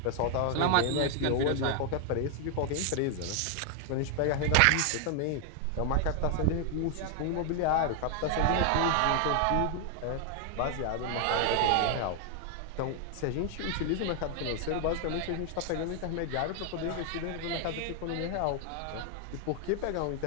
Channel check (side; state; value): both; different; correlation 0.00